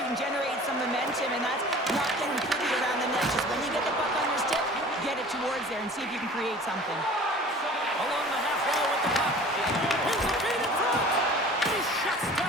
and generate some momentum, and that's not getting pretty around the net. Just when you get the puck on your stick, get it towards there and see if you can create something. Along the half wall with the puck. Here's the feed in front. He shuts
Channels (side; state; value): both; normal; correlation 0.44